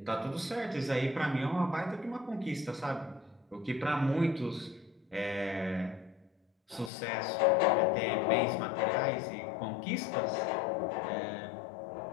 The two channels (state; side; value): drops out; right; at 6.9 s